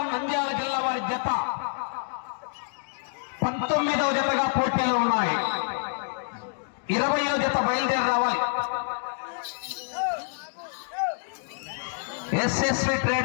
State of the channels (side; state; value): right; silent; digital silence